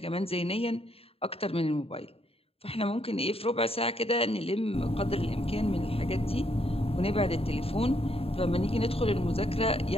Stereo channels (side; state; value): right; late; 0.28 ms